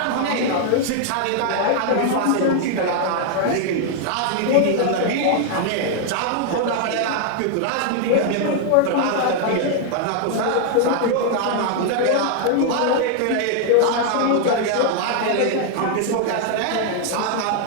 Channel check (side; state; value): both; different; correlation 0.00